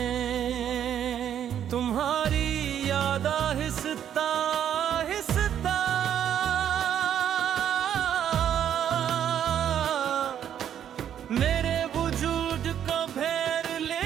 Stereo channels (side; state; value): left; quieter; 9.7 dB